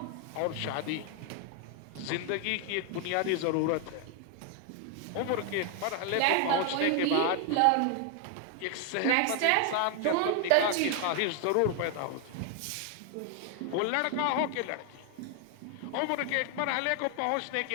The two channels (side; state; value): both; different; correlation 0.00